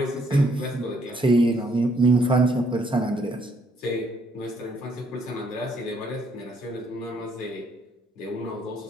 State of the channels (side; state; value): both; normal; correlation 0.69